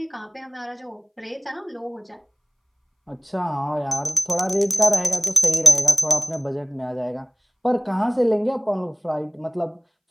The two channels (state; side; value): identical; both; correlation 1.00